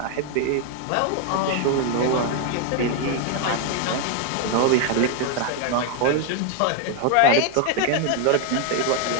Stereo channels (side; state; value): both; different; correlation 0.01